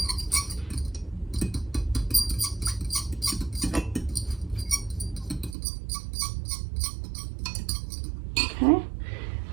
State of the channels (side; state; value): left; drops out; at 5.6 s